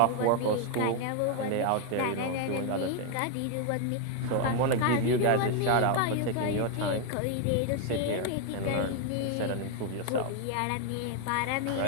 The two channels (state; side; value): different; both; correlation 0.01